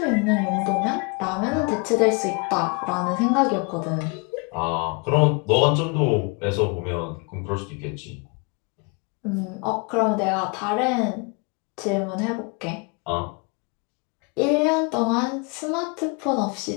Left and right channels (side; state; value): right; quieter; 32.8 dB